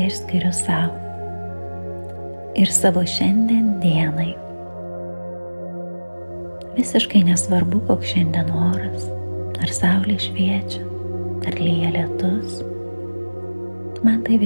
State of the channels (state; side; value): inverted; both; correlation -1.00